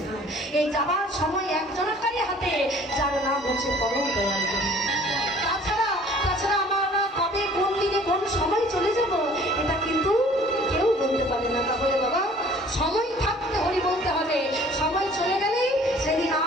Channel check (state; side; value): normal; both; correlation 0.53